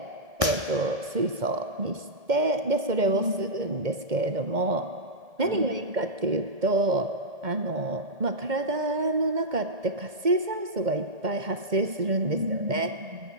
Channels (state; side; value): late; left; 1.7 ms